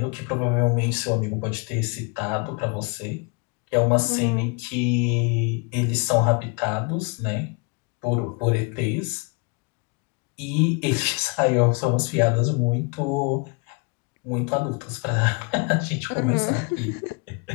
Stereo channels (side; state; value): right; quieter; 31.2 dB